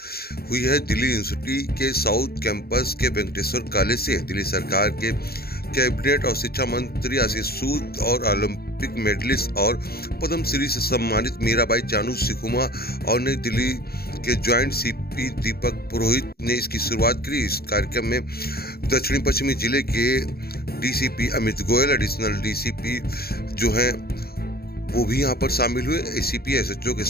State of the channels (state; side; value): late; right; 0.45 ms